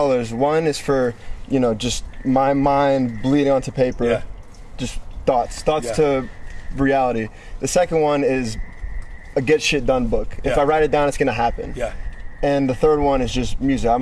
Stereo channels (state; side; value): identical; both; correlation 1.00